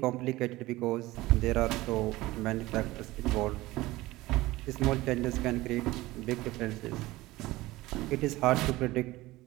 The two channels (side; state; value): left; quieter; 18.7 dB